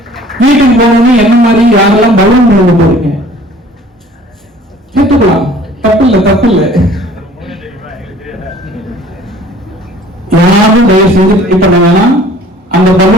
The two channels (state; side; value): normal; both; correlation 0.51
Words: வீட்டுக்கு போகணும். என்ன மாதிரி யாரெல்லாம் பலூன் கொண்டு போறீங்க கேட்டுக்கலாம், தப்பு இல்லை, தப்பு இல்லை. யாரும் தயவு செஞ்சு ட்ரை பண்ண வேணாம். அந்த